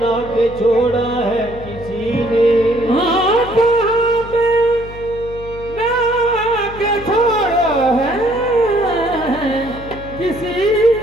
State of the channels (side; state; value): left; noise; hum, 14 dB below the sound